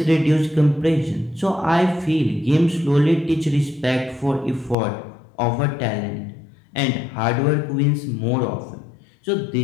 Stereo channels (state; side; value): drops out; right; at 4.8 s